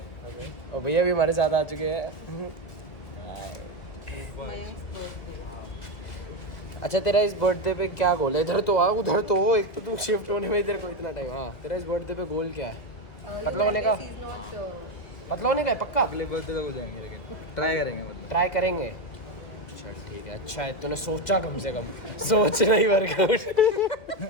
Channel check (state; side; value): late; right; 1.8 ms